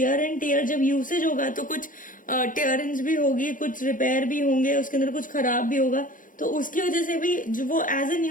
एंड टेयर, जब यूसेज होगा तो कुछ टेयरिंग्स भी होगी, कुछ रिपेयर भी होंगे, उसके अंदर कुछ खराब भी होगा, तो उसकी वजह से भी जो वो एज ए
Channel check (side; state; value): right; late; 0.39 ms